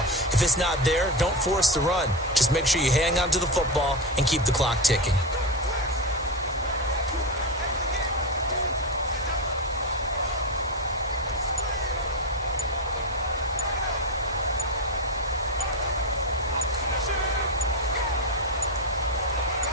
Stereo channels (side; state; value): both; normal; correlation 0.16